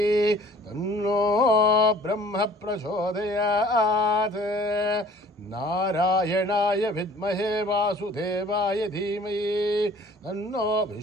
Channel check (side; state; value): both; normal; correlation 0.51